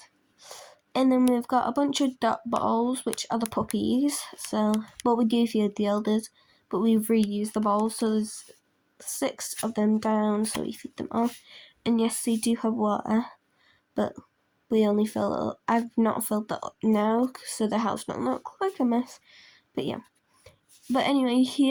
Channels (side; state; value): both; identical; correlation 1.00